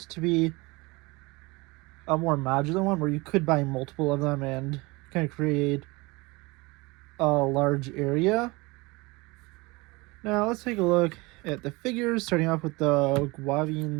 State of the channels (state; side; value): quieter; left; 24.3 dB